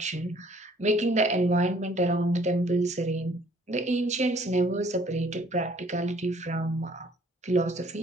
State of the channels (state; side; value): normal; both; correlation 0.59